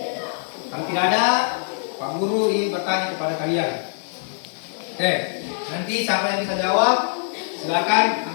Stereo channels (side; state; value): right; silent; digital silence